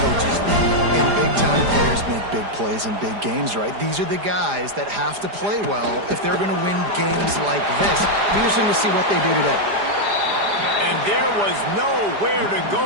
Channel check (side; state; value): left; late; 4.9 ms